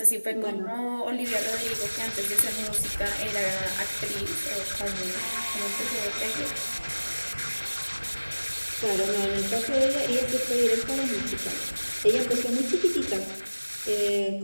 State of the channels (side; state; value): both; inverted; correlation -1.00